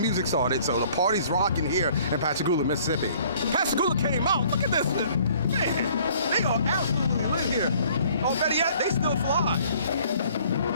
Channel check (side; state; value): both; inverted; correlation -0.57